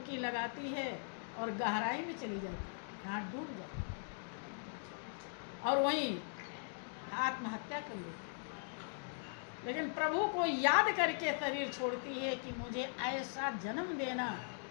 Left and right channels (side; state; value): right; silent; digital silence